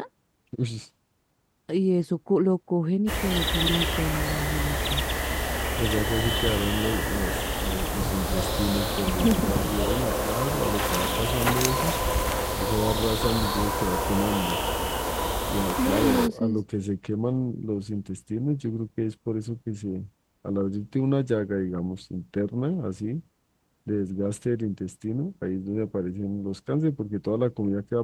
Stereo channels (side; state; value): both; identical; correlation 1.00